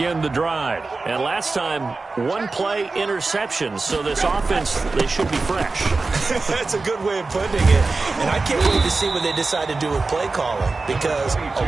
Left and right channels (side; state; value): left; quieter; 3.8 dB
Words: the drive. And last time, 1-play interception. So this offense, they should be fresh. That's a good way of putting it. And I can't wait to see what they decide to do with play calling. Because a